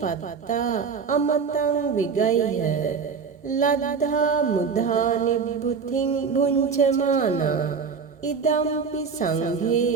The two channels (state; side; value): quieter; left; 5.7 dB